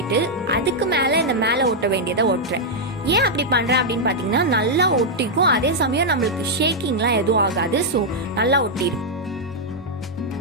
அதுக்கு மேல இந்த மேல ஒட்ட வேண்டியதை ஒட்டுறேன். ஏன் அப்படி பண்றேன் அப்படின்னு பாத்தீங்கன்னா, நல்லா ஒட்டிக்கும், அதே சமயம் நம்மளுக்கு ஷேக்கிங்லாம் எதுவும் ஆகாது. ஸோ நல்லா ஒட்டிடும்.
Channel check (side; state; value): both; normal; correlation -0.04